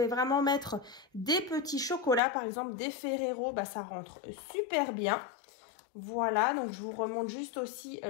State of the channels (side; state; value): right; drops out; at 2.2 s